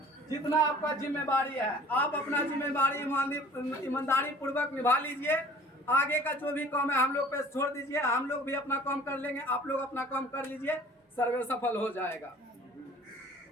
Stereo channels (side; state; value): both; normal; correlation 0.48